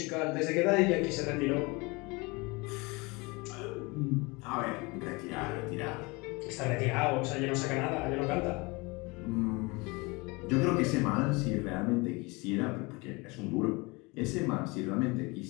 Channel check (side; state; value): right; quieter; 26.1 dB